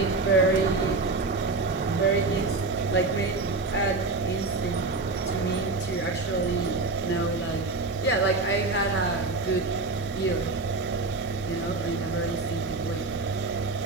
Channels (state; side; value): quieter; left; 3.5 dB